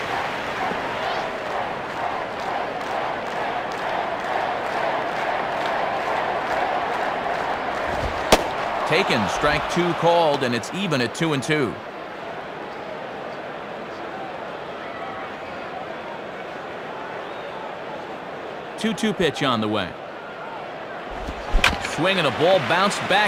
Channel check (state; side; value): identical; both; correlation 1.00